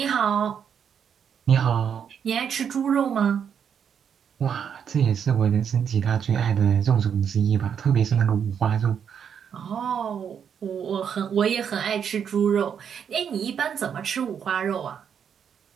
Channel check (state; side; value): quieter; left; 7.8 dB